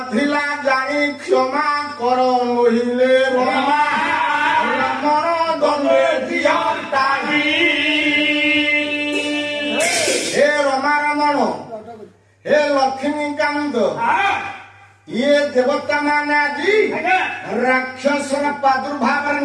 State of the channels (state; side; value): identical; both; correlation 1.00